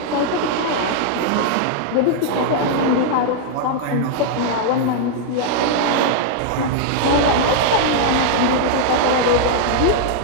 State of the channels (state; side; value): different; both; correlation -0.01